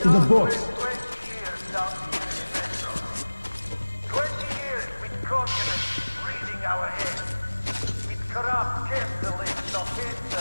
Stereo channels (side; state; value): both; inverted; correlation -1.00